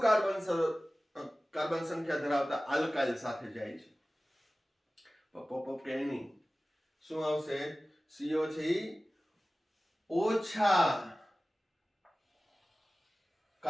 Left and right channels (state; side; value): normal; both; correlation 0.97